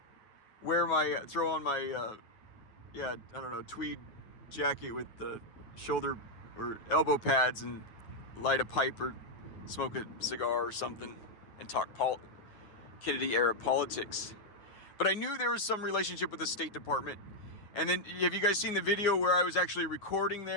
wear throw on my, tweed jacket with the shoulder or elbow pads and light a pipe or smoke a cigar or something and talk Kennedy-era politics. But I knew there was some relationship with the State Department. And then, have you guys seen the video where I was actually recording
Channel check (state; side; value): late; right; 9.3 ms